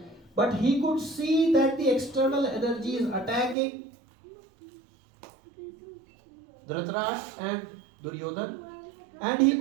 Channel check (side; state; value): left; drops out; at 3.6 s